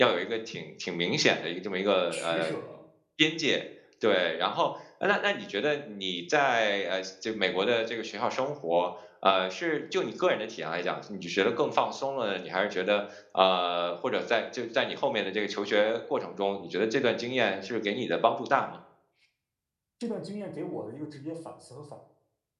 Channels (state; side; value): identical; both; correlation 1.00